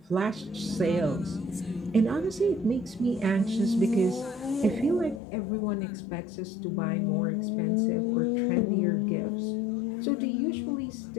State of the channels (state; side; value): drops out; right; at 5.2 s